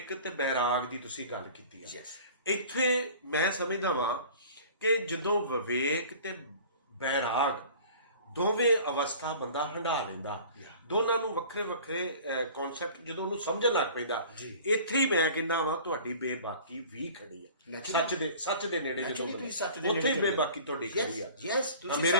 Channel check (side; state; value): both; inverted; correlation -0.44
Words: ਤੇ ਬੈਰਾਗ ਦੀ ਤੁਸੀਂ ਗੱਲ ਕੀਤੀ ਹੈ। ਇੱਥੇ ਮੈਂ ਸਮਝਦਾ ਵਾਂ ਕਿ ਜਦੋਂ ਵਿਵੇਕ ਤੇ ਬੈਰਾਗ ਦੋਵੇਂ ਅਵਸਥਾ ਬੰਦਾ ਹੰਢਾ ਲੈਂਦਾ, ਦੋਨਾਂ ਨੂੰ ਵੱਖਰੇ ਵੱਖਰੇ ਕਨਸੈਪਟ ਜਦੋਂ ਉਹਨੂੰ ਸਮਝਣ ਲੱਗ ਪੈਂਦਾ, ਇੱਥੇ ਹੀ ਮੈਂ ਕਹਿੰਦਾ ਵਾਂ ਤੁਹਾਡੀ ਬੇਬਾਕੀ ਵੀ ਖੜੀ ਆ। ਸੱਚ ਦੇ ਨੇੜੇ ਜਦੋਂ ਉੱਥੇ ਹੀ ਬੇਬਾਕੀ ਤੁਹਾਡੀ ਖੜੀ ਆ। ਤੁਸੀਂ